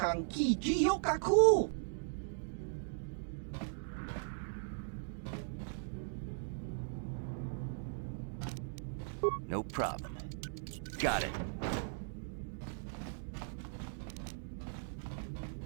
Ki Jiyokaku. No problem. Got it.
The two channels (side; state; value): left; silent; digital silence